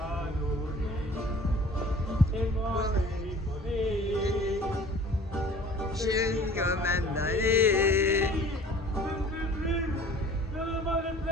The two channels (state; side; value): normal; both; correlation 0.48